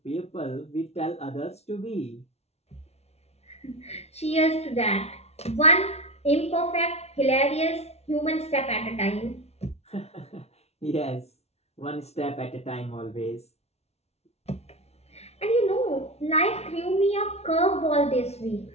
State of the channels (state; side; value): late; right; 0.31 ms